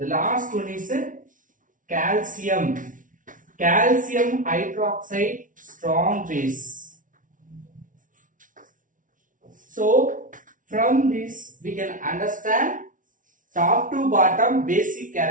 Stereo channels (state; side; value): late; left; 0.38 ms